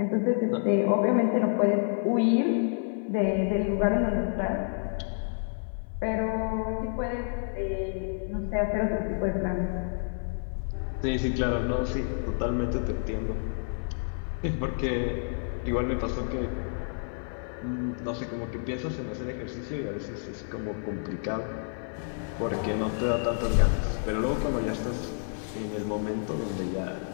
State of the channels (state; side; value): silent; right; 58 dB below the other